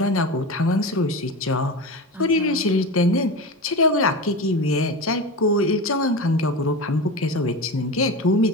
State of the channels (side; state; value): both; normal; correlation 0.25